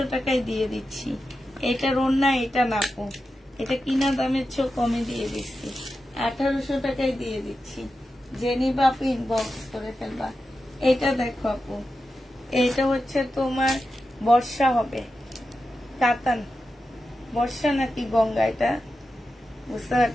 টাকায় দিয়ে দিচ্ছি। এটার ওড়না এটা না আপু, এটা কিনা দামের চেয়ে কমে দিয়ে দিচ্ছি, 1800 টাকায় দিয়ে দিচ্ছি। যে নিবা আপু ইনবক্স করে ফেলবা। এটা দেখো আপু, এটা হচ্ছে তোমার বর্ষা হবে, কাতান। বর্ষা নাকি গঙ্গা এটা বুঝতে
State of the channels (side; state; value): both; normal; correlation 0.91